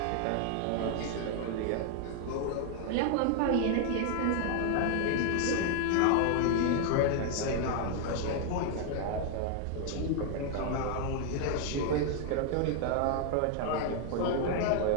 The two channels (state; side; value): different; both; correlation 0.00